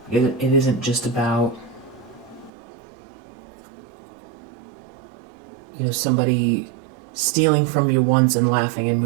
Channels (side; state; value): left; drops out; at 2.5 s